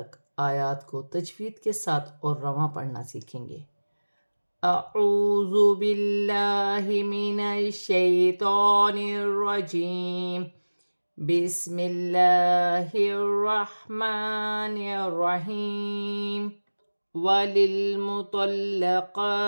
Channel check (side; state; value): both; inverted; correlation -1.00